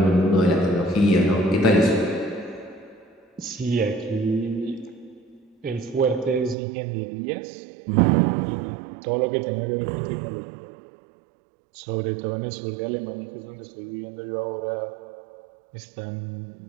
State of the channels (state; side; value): drops out; left; at 6.6 s